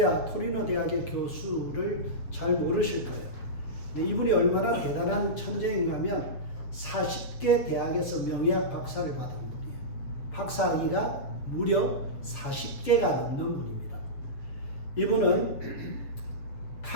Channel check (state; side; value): late; right; 7.3 ms